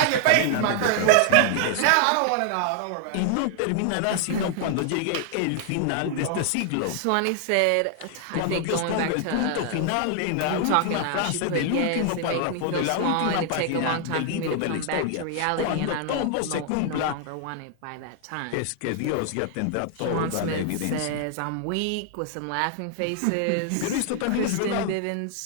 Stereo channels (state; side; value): different; both; correlation 0.00